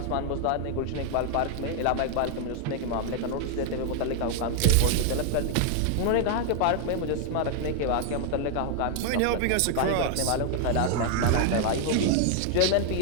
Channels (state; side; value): different; both; correlation 0.00